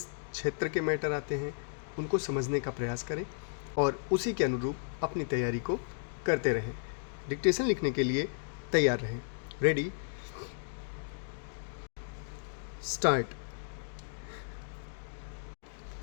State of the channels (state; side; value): silent; right; digital silence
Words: क्षेत्र के मैटर आते हैं, उनको समझने का प्रयास करें और उसी के अनुरूप अपनी तैयारी को करते रहें। डिक्टेशन लिखने के लिए तैयार रहें। Ready, start.